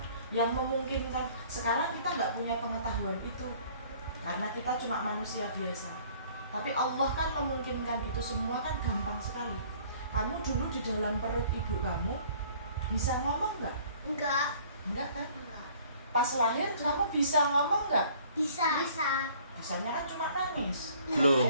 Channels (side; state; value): both; inverted; correlation -0.55